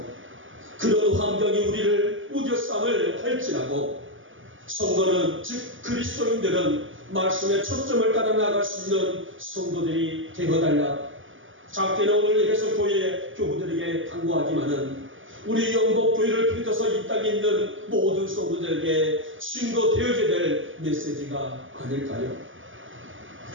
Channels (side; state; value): left; late; 0.57 ms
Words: 그런 환경이 우리를 우겨쌈을 할지라도 성도는 즉 그리스도인들은 말씀의 초점을 따라 나갈 수 있는 성도들이 되어달라. 작게는 오늘 예배소 교회 교우들에게 당부하지만은 우리 영복교회를 비롯해서 이 땅에 있는 모든 성도들에게 증거되어야 될 메시지가 아닐까요?